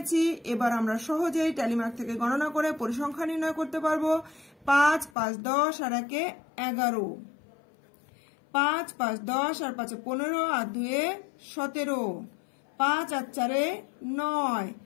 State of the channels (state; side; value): drops out; right; at 5.1 s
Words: এবার আমরা সহজেই ট্যালি মার্ক থেকে গণনা করে পরিসংখ্যা নির্ণয় করতে পারবো। 5, 5, 10 আর 1 11, 5, 5, 10 আর 5 15 আর 2 17, 5 আর 4 9,